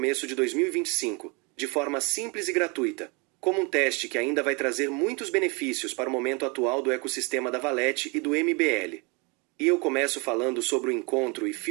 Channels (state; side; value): quieter; left; 30.5 dB